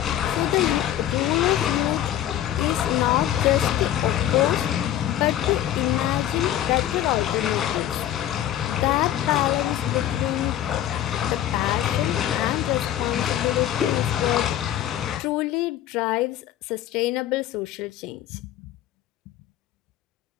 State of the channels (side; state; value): right; quieter; 12.1 dB